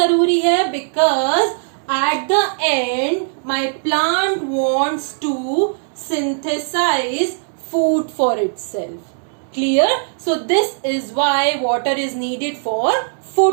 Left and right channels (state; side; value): silent; left; 63 dB below the other